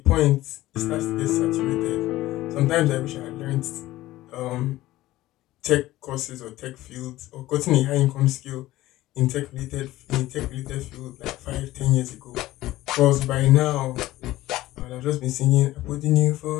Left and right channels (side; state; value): right; quieter; 16.4 dB